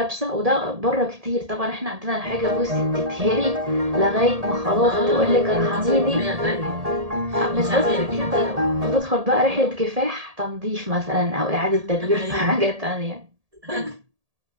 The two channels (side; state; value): left; late; 1.7 ms